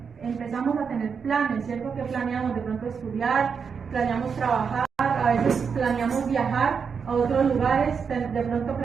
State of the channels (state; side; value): quieter; left; 6.1 dB